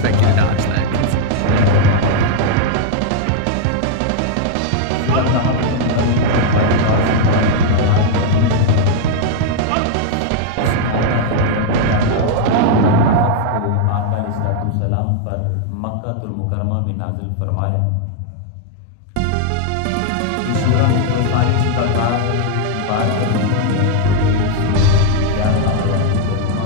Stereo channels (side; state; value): both; different; correlation 0.00